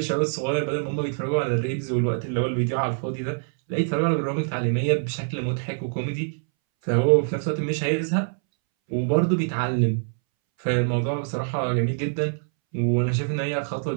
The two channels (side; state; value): left; silent; 62 dB below the other